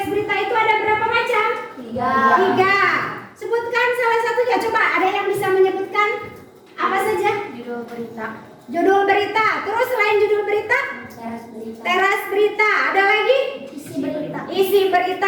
berita itu ada berapa macam? 3. Sebutkan salah satunya. Coba ada yang bisa menyebutkan apa saja? Judul berita. Judul berita. Terus selain judul berita? Teras berita. Teras berita. Ada lagi? Isi berita. Isi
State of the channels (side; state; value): both; identical; correlation 1.00